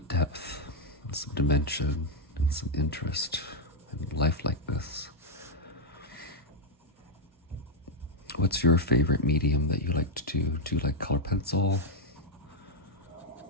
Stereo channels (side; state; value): both; normal; correlation -0.01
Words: depth and some dimension and some interest and lifelikeness. What's your favorite medium that you like to do? Do you like color pencil?